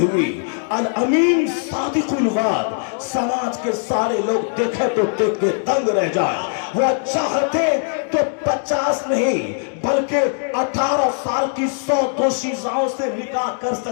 الامین صادق الوعد، سماج کے سارے لوگ دیکھے تو دیکھ کے دنگ رہ جائے، وہ چاہتے تو 50 نہیں بلکہ 18 سال کی 100 دوشیزاؤں سے نکاح کر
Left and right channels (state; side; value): silent; right; digital silence